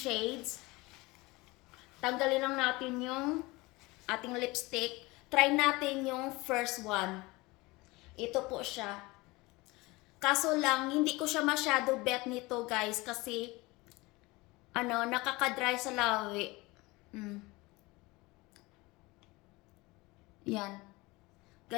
Tanggalin lang natin yung ating lipstick. Try natin yung first one. Ito po siya. Kaso lang, hindi ko siya masyado bet nito guys kasi ano, nakaka-dry sa lawi. Yan.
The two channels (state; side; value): quieter; right; 22.7 dB